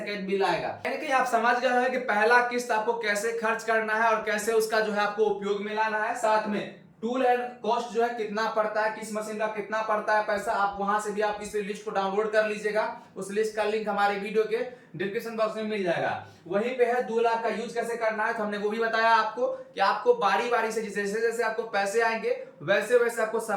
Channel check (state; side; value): identical; both; correlation 1.00